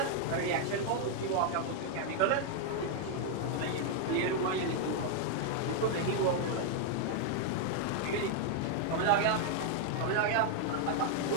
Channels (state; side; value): different; both; correlation 0.00